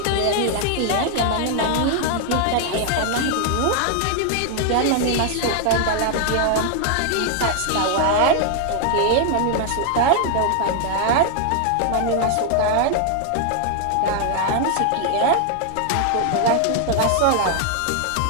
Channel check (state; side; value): different; both; correlation 0.00